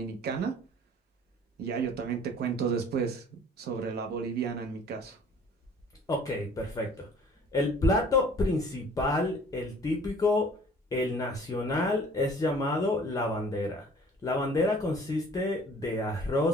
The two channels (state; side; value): normal; both; correlation 0.51